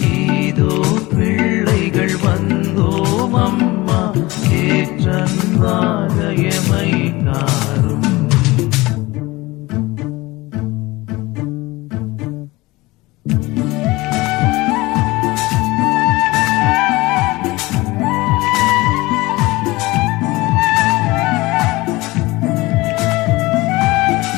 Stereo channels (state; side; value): quieter; right; 21.0 dB